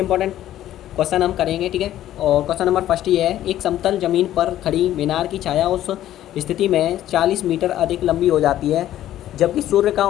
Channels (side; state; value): right; quieter; 12.7 dB